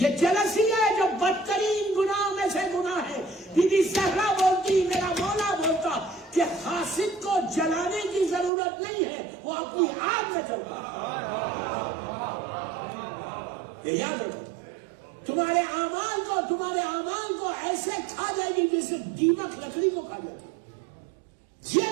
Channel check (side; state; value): left; drops out; at 8.5 s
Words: جلسی ہے، جو بدترین گناہوں میں سے گناہ ہے. بی بی زہرا بولتی، میرا مولا بولتا کہ حاسد کو جلانے کی ضرورت نہیں ہے، وہ اپنی آگ میں جلتا ہے. یہ یاد رکھو، تمہارے اعمال کو ایسے کھا جائے گی جیسے دیمک لکڑی کو کھا جاتی ہے. یہ